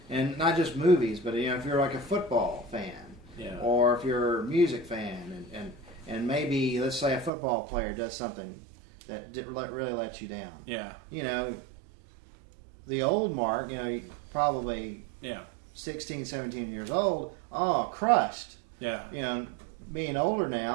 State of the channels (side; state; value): left; drops out; at 7.3 s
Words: and not just movies, but if you're like a football fan, or if you're a music fan, and maybe let's say a football player does something that really lets you down. Yeah. The old Mark, probably 16, 17 years old, crushed. Yeah. Being older